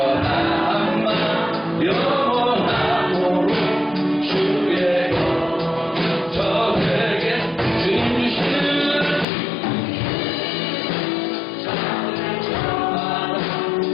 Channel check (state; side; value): drops out; right; at 9.2 s